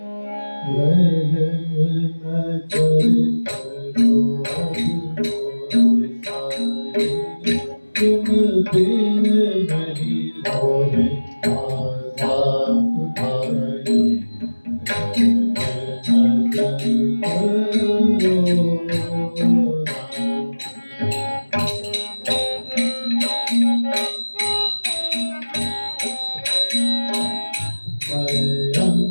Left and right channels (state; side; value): inverted; both; correlation -1.00